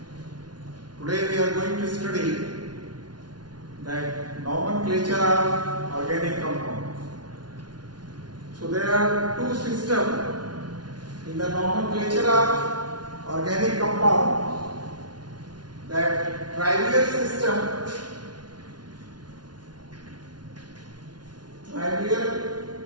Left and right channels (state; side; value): late; left; 0.70 ms